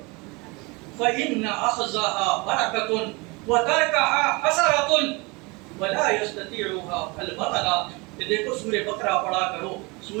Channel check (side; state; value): left; quieter; 26.7 dB